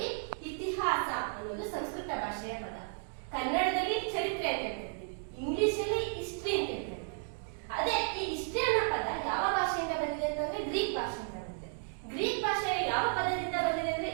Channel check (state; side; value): silent; left; 55 dB below the other